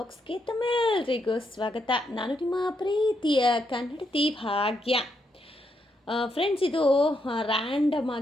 ತಮ್ಮೆಲ್ಲರಿಗೂ ಸ್ವಾಗತ. ನಾನು ನಿಮ್ಮ ಪ್ರೀತಿಯ ಕನ್ನಡತಿ ಭಾಗ್ಯ. ಫ್ರೆಂಡ್ಸ್, ಇದು ರ್ಯಾಂಡಮ್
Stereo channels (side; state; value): both; normal; correlation 0.79